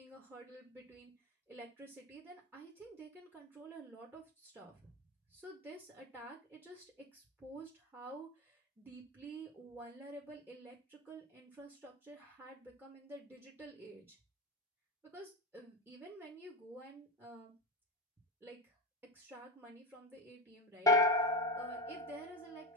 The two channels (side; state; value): both; normal; correlation 0.17